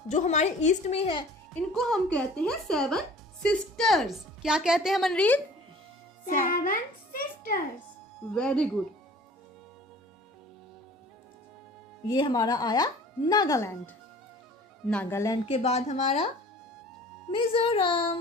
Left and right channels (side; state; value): both; normal; correlation 0.47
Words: जो हमारे ईस्ट में है, इनको हम कहते हैं 7 सिस्टर्स। क्या कहते हैं मनरीत? 7 सिस्टर्स। Very good. ये हमारा आया नागालैंड। नागालैंड के बाद हमारा